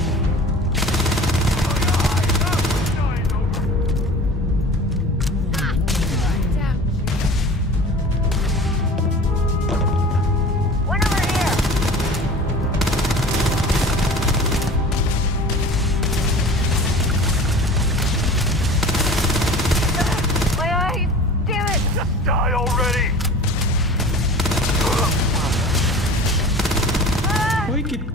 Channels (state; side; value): normal; both; correlation 0.40